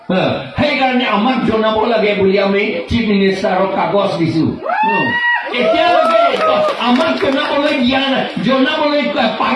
সেইকাৰণে আমাক জনাব লাগে বুলি আমি চিফ মিনিষ্টাৰক কাগজ দিছো এতিয়ালৈকে আমাক জনাবলৈ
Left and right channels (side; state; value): both; identical; correlation 1.00